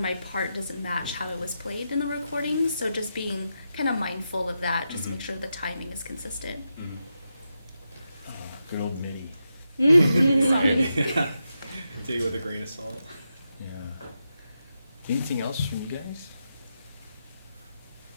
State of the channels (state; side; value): inverted; both; correlation -0.87